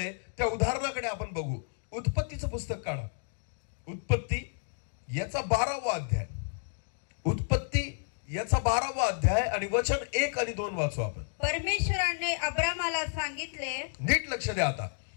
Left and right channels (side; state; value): right; silent; digital silence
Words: त्या उदाहरणाकडे आपण बघू. उत्पत्तीचं पुस्तक काढा. उत्पत्ती याचा 12वा अध्याय. उत्पत्ती याचा 12वा अध्याय आणि वचन 1 आणि 2 वाचू आपण. परमेश्वराने अब्रामाला सांगितले, नीट लक्ष द्या आता.